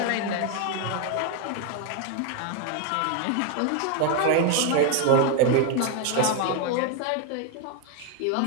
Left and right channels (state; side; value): different; both; correlation 0.01